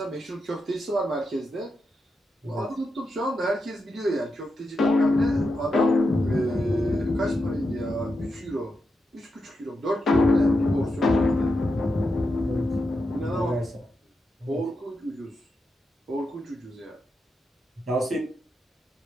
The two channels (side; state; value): both; normal; correlation 0.86